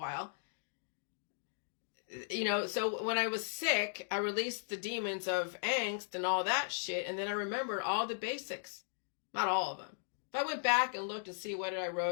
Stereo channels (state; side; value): silent; right; digital silence